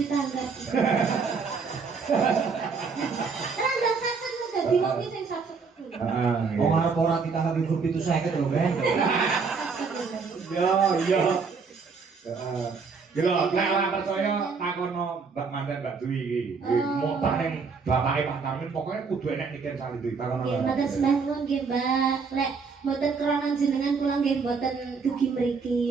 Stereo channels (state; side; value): quieter; left; 5.1 dB